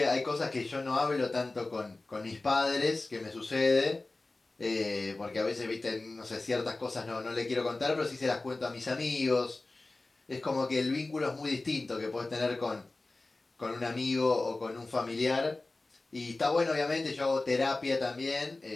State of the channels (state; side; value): quieter; right; 3.2 dB